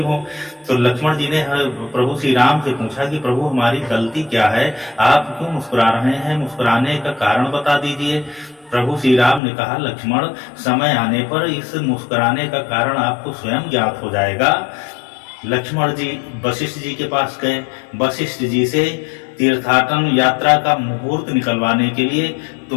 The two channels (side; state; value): right; drops out; at 9.4 s